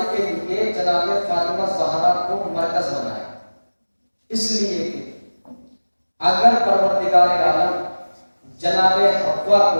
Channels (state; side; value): inverted; both; correlation -1.00